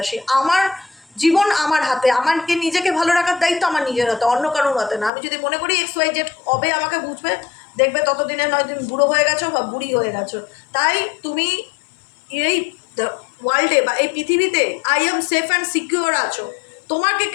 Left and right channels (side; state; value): right; drops out; at 5.1 s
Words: আমার জীবন আমার হাতে, আমাকে নিজেকে ভালো রাখার দায়িত্ব আমার নিজের হাতে, অন্য কারোর হাতে না। আমি যদি মনে করি XYZ কবে আমাকে বুঝবে, দেখবে ততদিনে নয় তুমি বুড়ো হয়ে গেছো বা বুড়ি হয়ে গেছো। তাই তুমি এই ওয়ার্ল্ডে বা এই পৃথিবীতে I am safe and secure আছো। তোমাকে